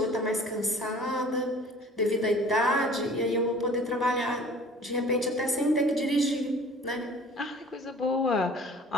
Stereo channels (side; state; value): both; normal; correlation 0.48